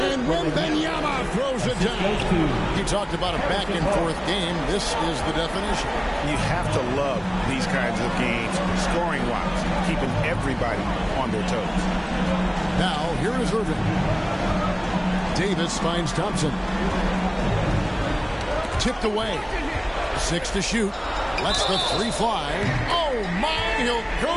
And Wembanyama throws it down. He talked about a back-and-forth game. This is the definition. You have to love these kinds of games, scoring-wise, keeping everybody on their toes. Now, here is Irving. Davis finds Thompson. Tipped away. 6 to shoot. Lets the 3 fly. Oh, my! He'll go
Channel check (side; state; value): both; identical; correlation 1.00